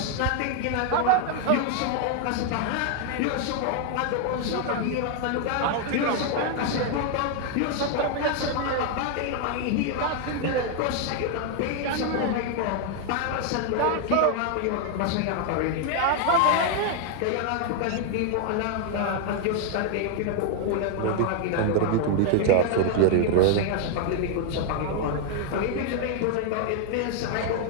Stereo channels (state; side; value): different; both; correlation 0.00